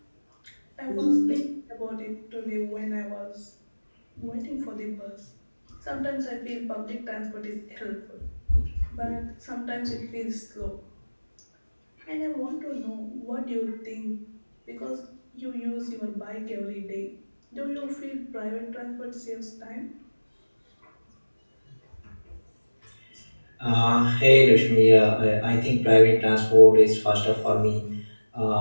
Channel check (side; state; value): both; inverted; correlation -1.00